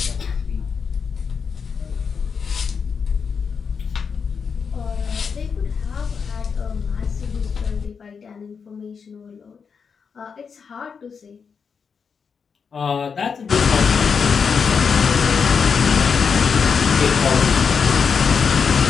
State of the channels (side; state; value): right; quieter; 6.0 dB